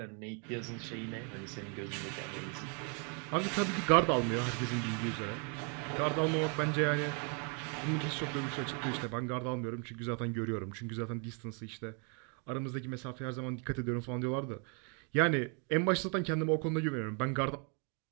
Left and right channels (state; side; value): quieter; left; 37.5 dB